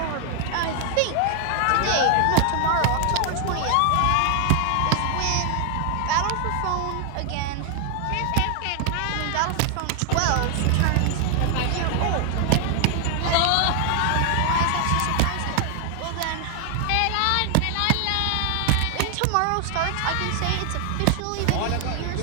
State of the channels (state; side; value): different; both; correlation 0.00